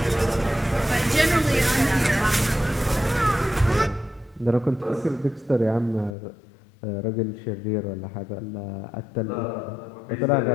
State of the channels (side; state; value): right; drops out; at 6.2 s